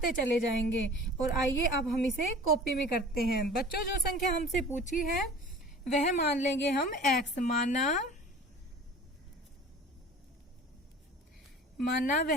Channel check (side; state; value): both; normal; correlation 0.43